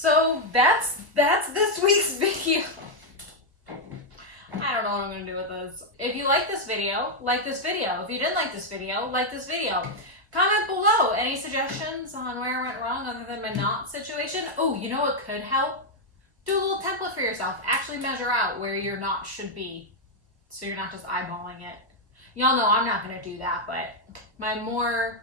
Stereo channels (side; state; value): both; normal; correlation 0.00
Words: that's this week's video. I don't know what I'm gonna do with this. If you like this video, like this video. If you didn't like this video, like this video. Comment below any suggestions on where I went wrong other than my knot situation. Oh, you know what could help? Do a little template for yourself. Actually measure out where your knot should be, so you're not just eyeballing it. Y'all know I'm not gonna do that, but my more